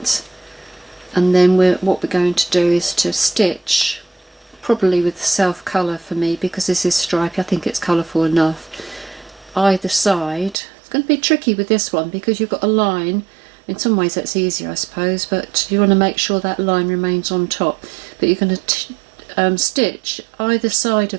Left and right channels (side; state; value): left; drops out; at 10.6 s